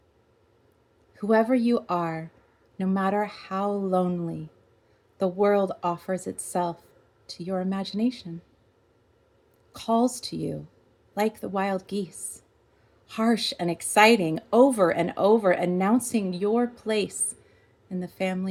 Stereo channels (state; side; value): identical; both; correlation 1.00